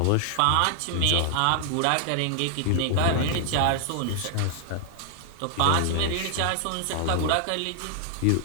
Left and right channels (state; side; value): different; both; correlation 0.00